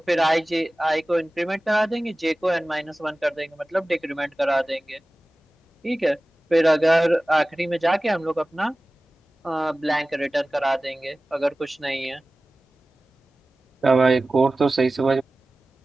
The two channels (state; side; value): normal; both; correlation 0.97